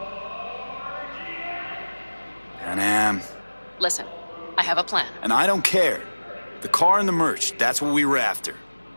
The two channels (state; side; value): inverted; both; correlation -1.00